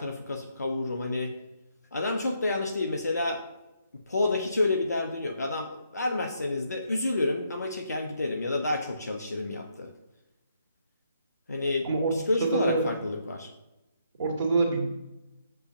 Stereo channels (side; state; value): both; inverted; correlation -0.75